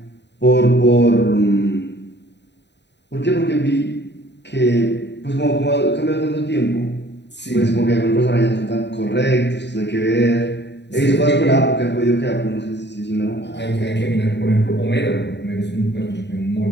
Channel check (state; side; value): late; right; 0.50 ms